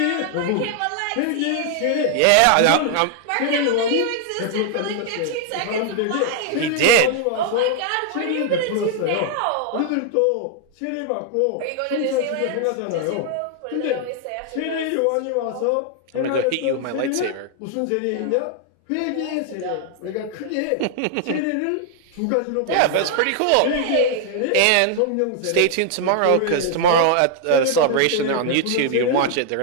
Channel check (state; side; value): different; both; correlation 0.00